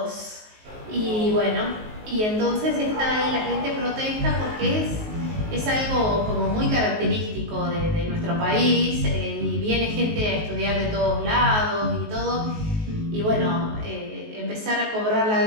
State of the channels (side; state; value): left; late; 19 ms